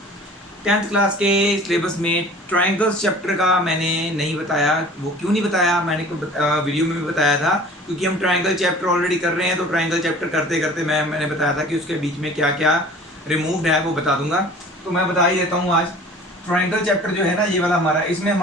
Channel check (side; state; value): both; normal; correlation 0.46